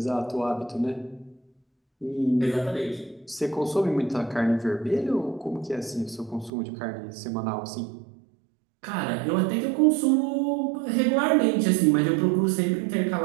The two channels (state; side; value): drops out; left; at 6.5 s